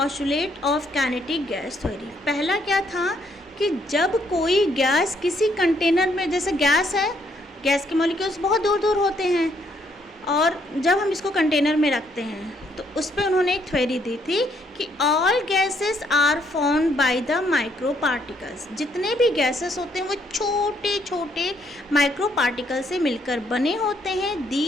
of kinetic gas theory. पहला क्या था कि जब कोई गैस किसी कंटेनर में, जैसे गैस है, गैस के मॉलिक्यूल्स बहुत दूर दूर होते हैं, और जब हम इसको कंटेनर में रखते हैं तो उस पर उन्होंने एक थ्योरी दी थी कि all gases are formed by the micro particles. जितने भी गैसेस होते हैं वो छोटे छोटे माइक्रो पार्टिकल से मिलकर बने होते हैं।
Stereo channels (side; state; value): both; normal; correlation 0.71